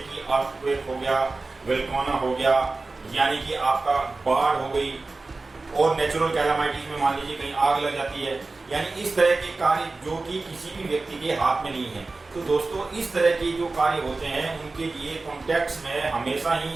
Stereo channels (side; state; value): left; quieter; 3.5 dB